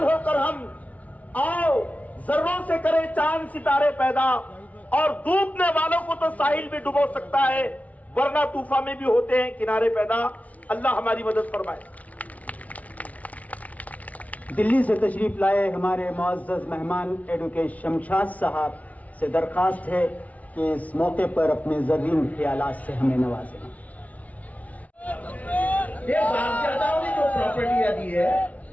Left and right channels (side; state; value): right; late; 0.070 ms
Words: होकर हम आओ जर्रों से करें चांद सितारे पैदा, और डूबने वालों को तो साहिल भी डुबो सकता है, वरना तूफान में भी होते हैं किनारे पैदा। अल्लाह हमारी मदद फरमाए। दिल्ली से तशरीफ लाए हमारे मुअज़्ज़ज़ मेहमान एडवोकेट शमशाद साहब से दरख्वास्त है कि इस मौके पर अपने ज़रीन ख्यालात से हमें नवाजें। ये बापदादाओं ने जो प्रॉपर्टियां दी है